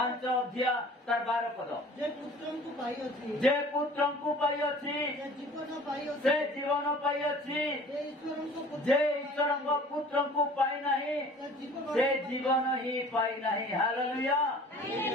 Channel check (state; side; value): normal; both; correlation 0.47